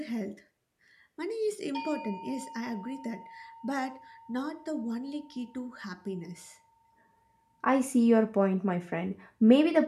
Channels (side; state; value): both; identical; correlation 1.00